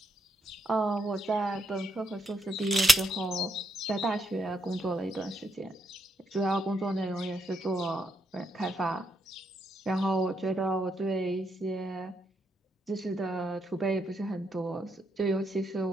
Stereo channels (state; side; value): normal; both; correlation 0.77